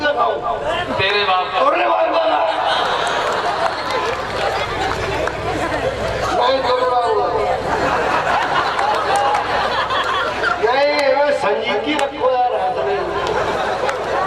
खाऊं तेरे बाप का। तोरे बाप का था। नहीं तोरे बाप का नहीं, मैं संजीकी रखो यार हाथ में।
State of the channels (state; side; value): identical; both; correlation 1.00